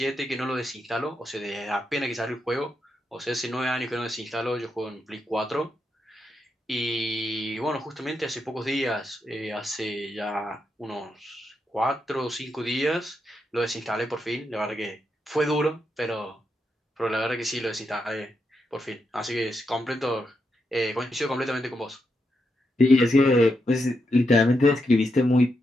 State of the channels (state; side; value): normal; both; correlation 0.83